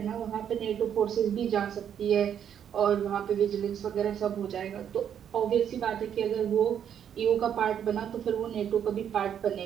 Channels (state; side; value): quieter; left; 9.0 dB